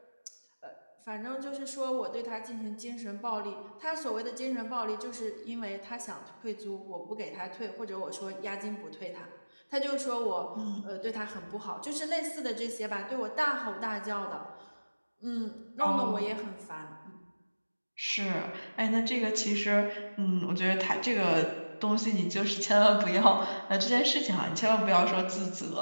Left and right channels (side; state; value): both; inverted; correlation -1.00